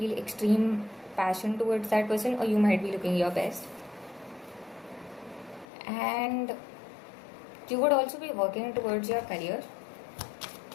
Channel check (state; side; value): drops out; right; at 5.7 s